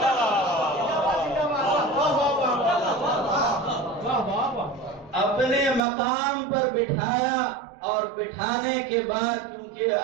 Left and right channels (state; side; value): drops out; left; at 5.8 s